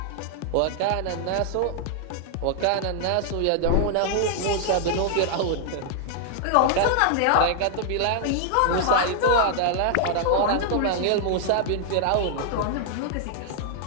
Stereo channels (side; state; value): both; different; correlation 0.00